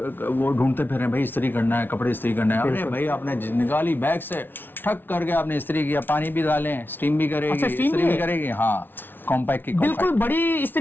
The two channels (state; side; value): late; right; 0.098 ms